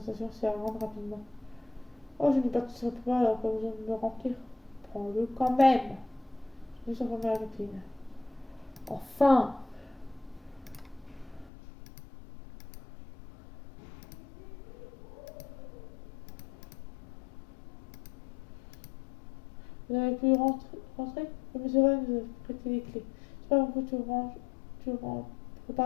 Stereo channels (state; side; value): drops out; right; at 11.5 s